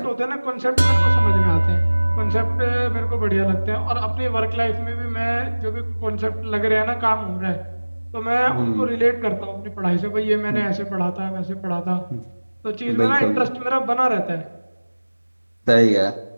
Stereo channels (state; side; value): inverted; both; correlation -1.00